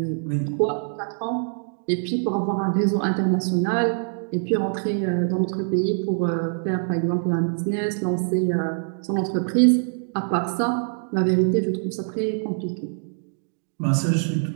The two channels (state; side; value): silent; left; digital silence